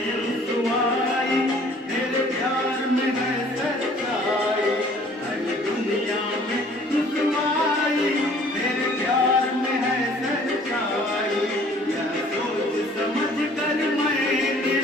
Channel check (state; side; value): normal; both; correlation 0.55